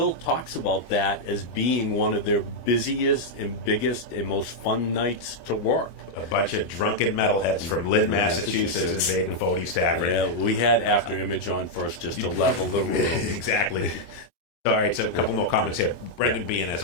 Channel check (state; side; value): late; right; 23 ms